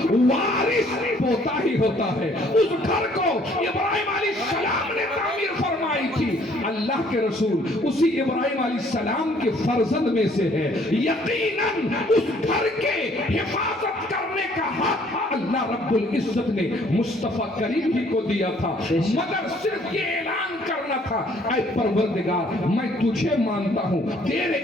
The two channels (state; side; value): normal; both; correlation 0.61